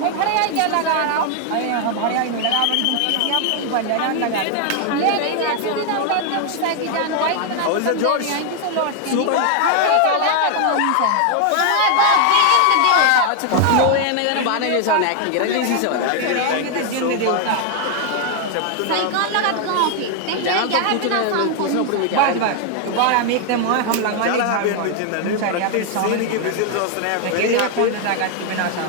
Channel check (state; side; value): different; both; correlation 0.00